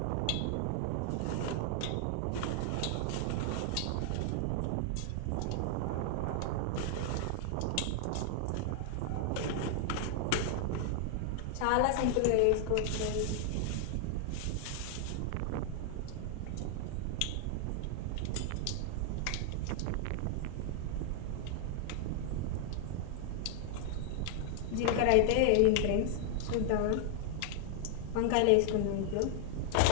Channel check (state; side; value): different; both; correlation 0.00